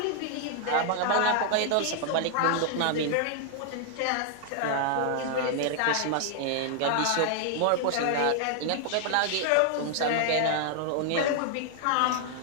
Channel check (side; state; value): both; different; correlation 0.00